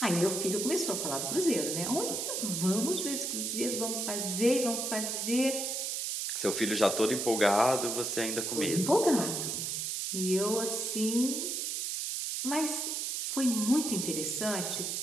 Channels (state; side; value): noise; right; hiss, 2 dB below the sound